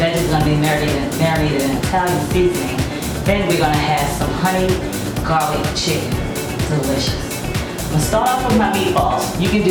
are going to be marinated in Italian seasoning. Then we're going to have some honey garlic chicken. Delicious. I'm going to start off with my meatballs. You can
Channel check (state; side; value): identical; both; correlation 1.00